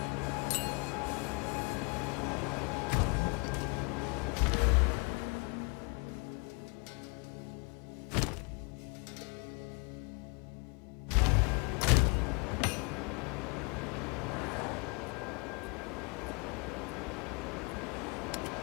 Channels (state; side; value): quieter; right; 31.6 dB